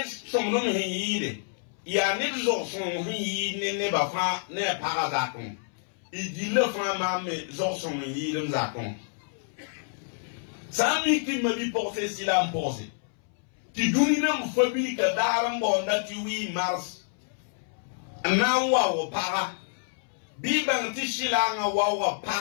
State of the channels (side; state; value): right; silent; 59 dB below the other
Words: somo me hi ya ni zo son hi ne ba fa ne para za kon ijile fa mama zo son hi dem za kon sami ki ma bi porter silam porter ti duni na mfabili ka daram bonda ti wi mars na wa para bi bang ti shilanga wa